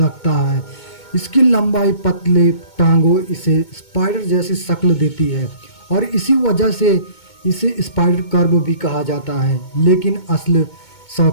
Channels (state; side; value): late; right; 2.2 ms